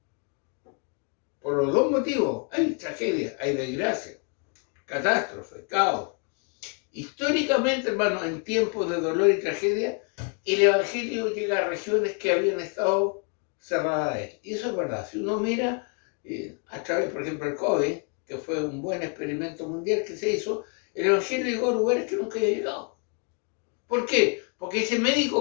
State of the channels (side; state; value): right; quieter; 36.1 dB